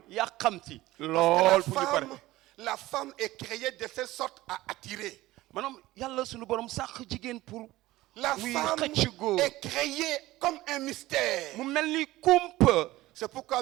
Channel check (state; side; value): quieter; left; 17.4 dB